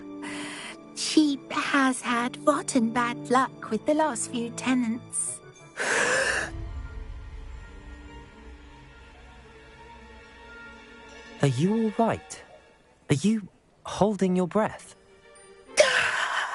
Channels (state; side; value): identical; both; correlation 1.00